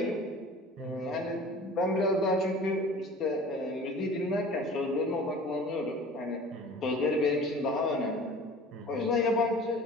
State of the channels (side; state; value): both; normal; correlation 0.43